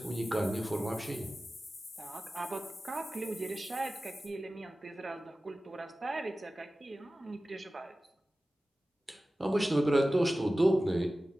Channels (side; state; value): both; normal; correlation 0.96